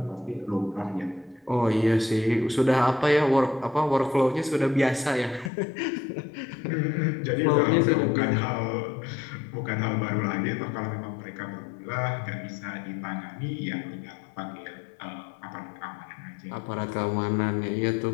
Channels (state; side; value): drops out; right; at 5.5 s